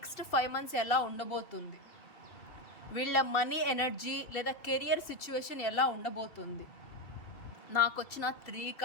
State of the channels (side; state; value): right; late; 2.7 ms